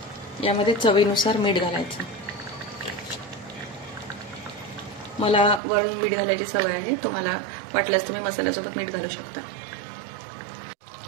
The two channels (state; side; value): drops out; left; at 5.6 s